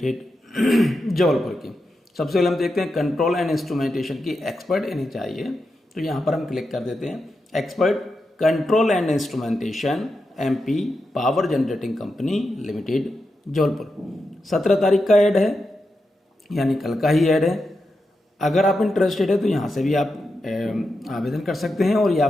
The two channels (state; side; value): normal; both; correlation 0.88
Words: Jabalpur की। सबसे पहले हम देखते हैं कंट्रोल एंड इंस्ट्रूमेंटेशन की एक्सपर्ट इन्हें चाहिए, तो यहाँ पर हम क्लिक कर देते हैं expert control and instrumentation MP power generating company limited Jabalpur. 17 तारीख का ऐड है, यानी कल का ही ऐड है। अगर आप इंटरेस्टेड है तो यहाँ से भी आप आवेदन कर सकते हैं और या